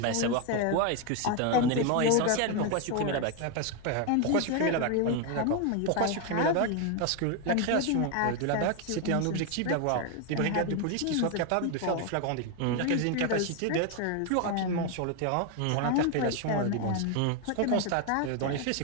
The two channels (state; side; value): different; both; correlation 0.01